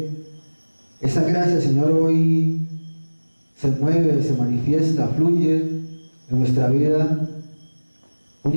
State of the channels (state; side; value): inverted; both; correlation -1.00